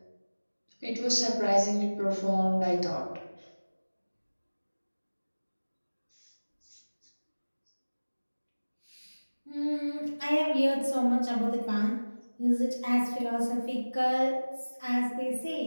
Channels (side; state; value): both; inverted; correlation -1.00